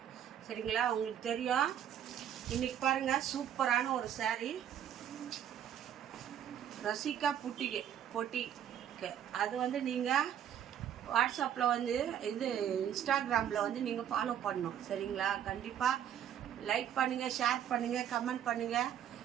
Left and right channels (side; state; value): left; quieter; 9.8 dB